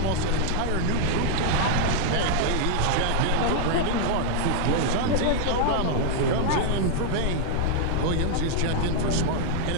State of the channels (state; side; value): different; both; correlation 0.00